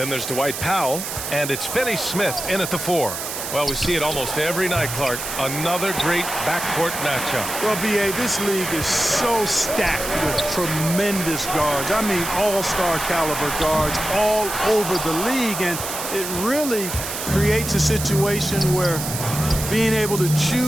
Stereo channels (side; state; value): right; noise; hiss, 6 dB below the sound